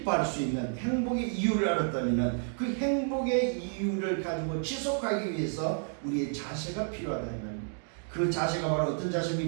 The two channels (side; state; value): left; silent; 57 dB below the other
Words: 수 있는 행복의 이유를 알았다면 그 행복의 이유를 가지고 지속하기 위해서 우리의 자세가 필요하다면 그 자세가 바로 어떤